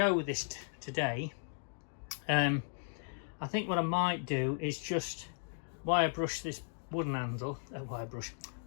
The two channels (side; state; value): right; silent; digital silence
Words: with this today. I think what I might do is just wire brush this wooden handle,